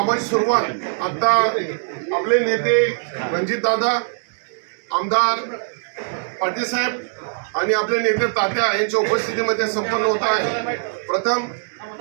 सुरुवात आता आपले नेते रणजित दादा, आमदार पाटील साहेब आणि आपले नेते तात्या यांच्या उपस्थितीमध्ये संपन्न होत आहे. प्रथम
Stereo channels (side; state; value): left; silent; digital silence